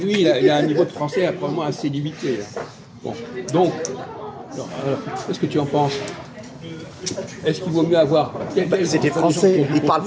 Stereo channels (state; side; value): identical; both; correlation 1.00